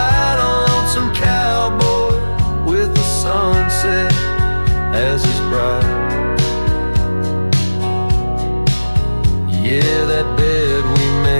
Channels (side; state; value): both; inverted; correlation -1.00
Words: a lonesome cowboy with the sunset as his bride. Yeah, that bed we